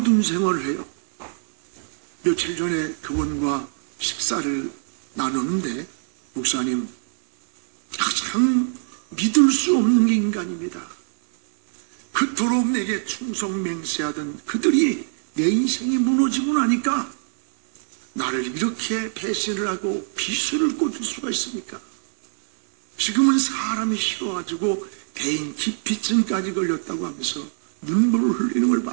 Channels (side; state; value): left; silent; digital silence